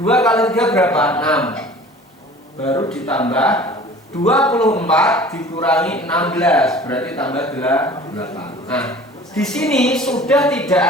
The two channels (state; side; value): normal; both; correlation 0.45